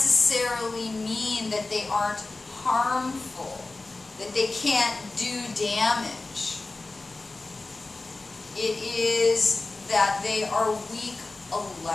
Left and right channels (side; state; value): right; quieter; 3.3 dB